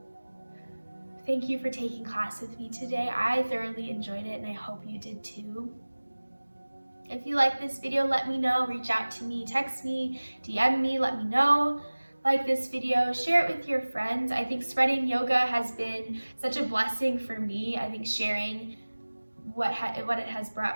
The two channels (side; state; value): both; inverted; correlation -1.00